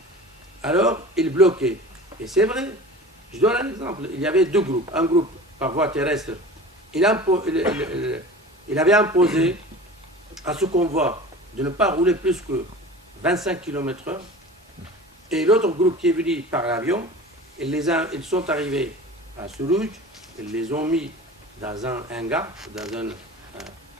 Alors, il bloquait. Et c'est vrai, je donne un exemple, il y avait deux groupes, un groupe par voie terrestre, il avait imposé à ce convoi de ne pas rouler plus que 25 km/h, et l'autre groupe qui est venu par l'avion, ils sont arrivés à Sourouj, ils les ont mis dans un hangar, dans un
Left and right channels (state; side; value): normal; both; correlation 0.38